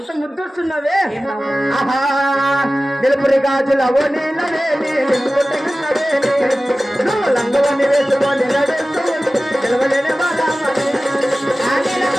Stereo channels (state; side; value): normal; both; correlation 0.96